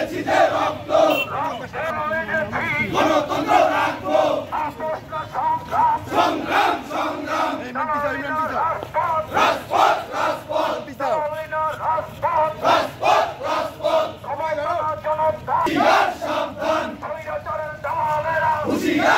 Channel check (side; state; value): both; identical; correlation 1.00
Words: যে রক্ত, রক্তে লেগেছি, গণতন্ত্র রাখবো, আপোষ না সংগ্রাম, সংগ্রাম সংগ্রাম, চালাই না রাজপথ, রাজপথ রাজপথ, চালাই না রাজপথ, রাজপথ রাজপথ, সবাই জনতা, হুঁশিয়ার সাবধান, স্বৈরাচারের দালালেরা,